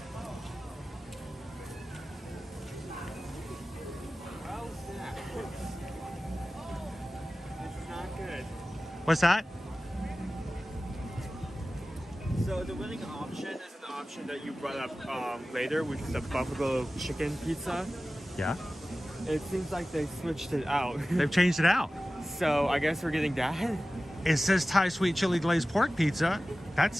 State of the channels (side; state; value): both; normal; correlation 0.96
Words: Oh. This is not good. What's that? So the winning option is an option that you brought up later, which is the buffalo chicken pizza. Yeah. It seems like they switched it out. They've changed it out. So I guess we're getting that. It says Thai sweet chili glazed pork pizza. That